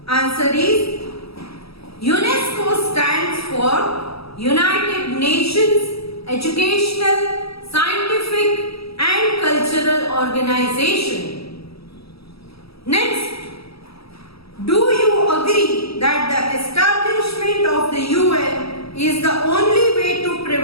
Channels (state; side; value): late; right; 0.77 ms